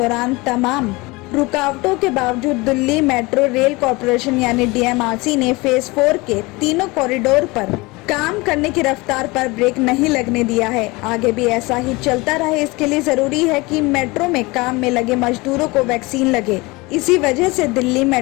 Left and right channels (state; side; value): quieter; right; 23.7 dB